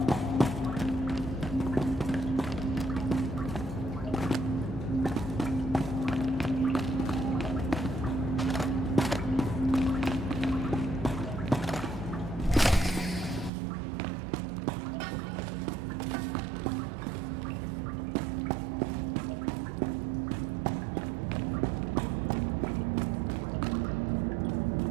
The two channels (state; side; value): drops out; left; at 13.5 s